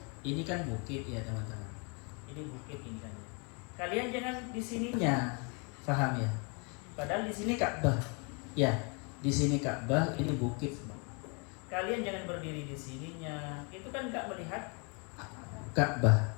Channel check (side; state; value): right; quieter; 34.6 dB